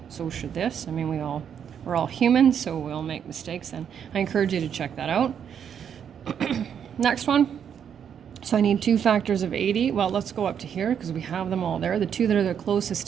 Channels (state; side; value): quieter; left; 8.2 dB